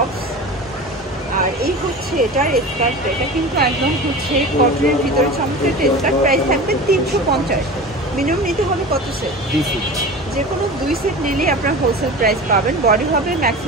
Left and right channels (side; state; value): both; normal; correlation 0.33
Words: আর এই হচ্ছে এটার স্কার্টটা। এটা কিন্তু একদম হচ্ছে কটনের ভিতরে চমৎকার একটা স্কার্ট। প্রাইস থাকবে 350। মিনিমাম নিতে হবে কত সেট? যে কোনো 2 সেট নিলেই আপনার হোলসেল প্রাইস পাবেন। বডি হবে